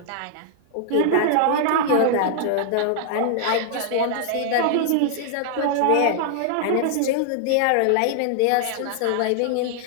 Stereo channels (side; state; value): both; different; correlation 0.00